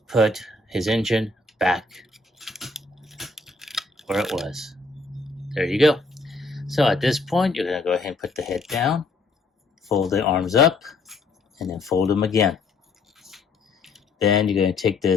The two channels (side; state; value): right; quieter; 3.5 dB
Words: put his engine back where it was. There you go. So at this point, you're going to go ahead and put the head down, fold the arms up, and then fold them again. Then you're going to take